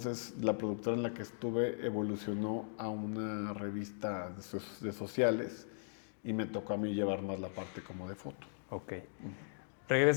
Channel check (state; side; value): silent; right; digital silence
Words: la productora en la que estuve evolucionó a una revista de sociales, y me tocó a mí llevar más la parte como de foto. Ok.